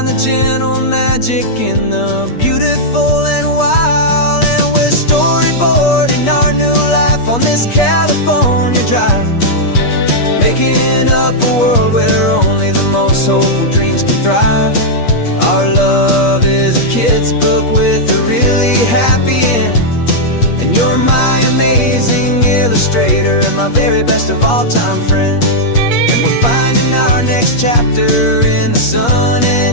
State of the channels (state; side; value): late; right; 8.5 ms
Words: the gentle magic in the beautiful and wild. And we're storyboarding our new life on this California drive, making up a world where only the most hopeful dreams can thrive. Our love is a kid's book with a really happy end, and you're my amazing illustrator and my very best of all time friend. And we're finding our next chapter in the sun